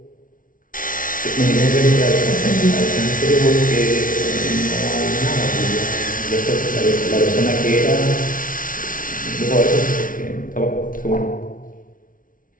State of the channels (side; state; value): right; late; 0.39 ms